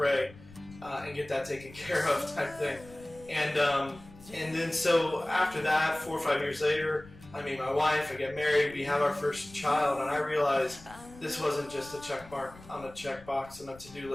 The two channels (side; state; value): left; noise; rumble, 20 dB below the sound